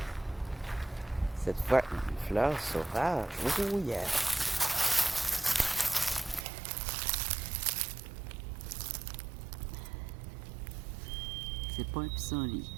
cette fois, une fleur sauvage. Oh yeah! C'est pas un pissenlit.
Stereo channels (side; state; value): left; drops out; at 6.5 s